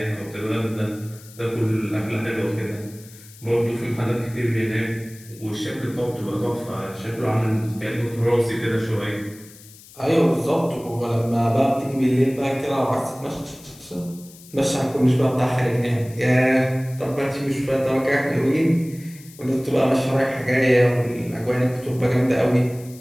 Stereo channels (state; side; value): noise; left; hiss, 21 dB below the sound